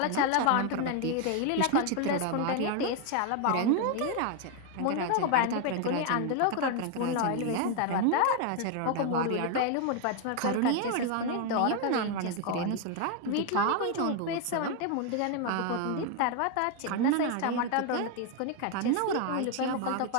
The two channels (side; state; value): both; different; correlation 0.01